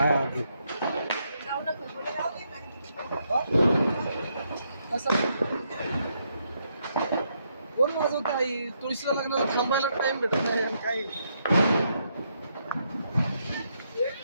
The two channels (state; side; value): inverted; both; correlation -0.77